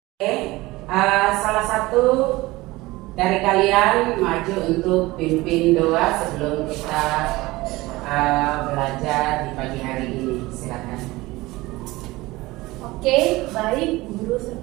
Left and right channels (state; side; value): quieter; left; 20.2 dB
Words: Oke, salah satu dari kalian maju untuk pimpin doa sebelum kita belajar di pagi hari ini. Silakan. Oke, baik guru